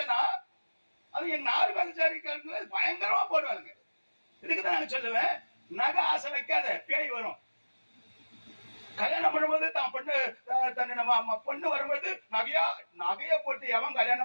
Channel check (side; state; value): both; inverted; correlation -1.00